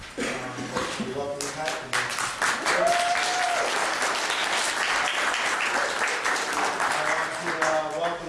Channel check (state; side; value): identical; both; correlation 1.00